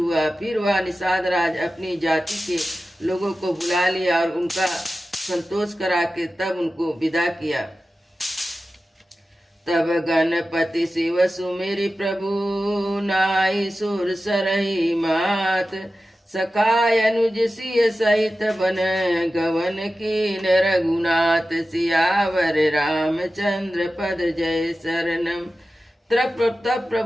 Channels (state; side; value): normal; both; correlation 0.94